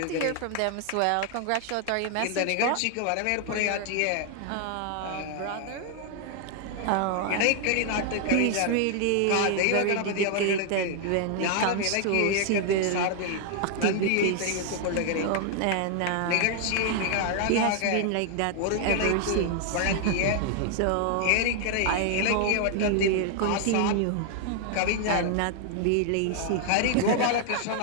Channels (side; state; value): both; different; correlation 0.00